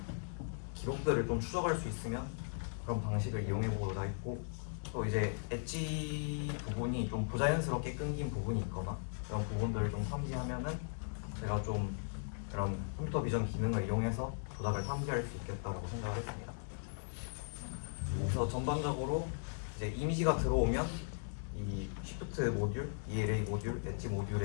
기록들을 좀 추적할 수 있으면 그런 방식을 이용해보고자 했고, 또 이제 엣지 부분이 좀 부자연스럽게 끊긴 부분이 있거나 그런 부분들을 좀 탐지하면은 제가 좀 그런 컴퓨터 비전 기능을 이용해서 조작을 탐지할 수 있겠다라고 생각을 했습니다. 그래서 전반적으로 이제 이미지가 들어오면 이 Shift 모듈, ELA 모듈, 엣지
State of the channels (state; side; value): silent; right; digital silence